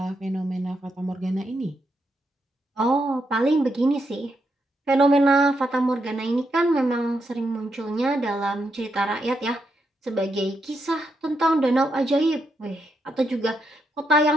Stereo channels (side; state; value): both; normal; correlation 0.81